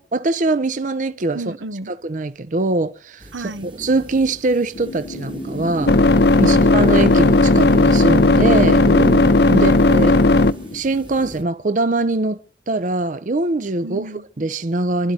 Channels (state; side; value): normal; both; correlation 0.41